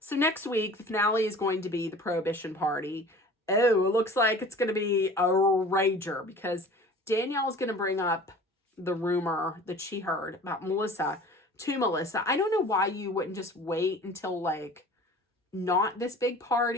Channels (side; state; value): both; normal; correlation 0.43